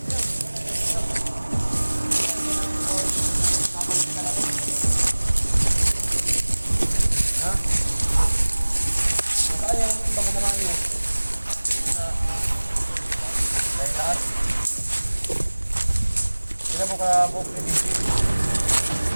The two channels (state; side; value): inverted; both; correlation -1.00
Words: Ha? Saan yung ibang naman nyo? Dahil lahat. Sila mo ka buong kredisip.